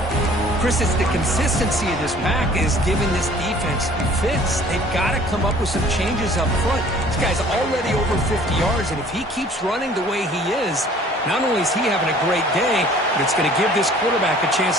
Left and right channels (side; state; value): both; normal; correlation 0.52